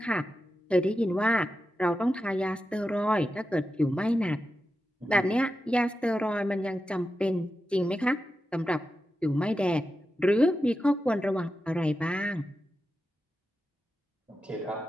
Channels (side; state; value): both; normal; correlation 0.91